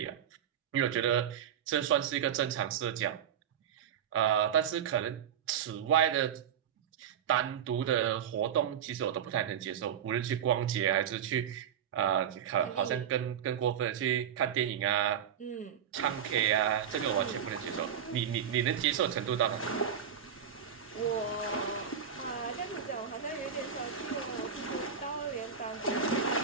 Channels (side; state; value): left; quieter; 8.5 dB